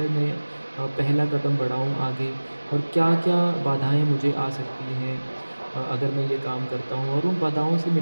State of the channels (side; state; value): both; inverted; correlation -1.00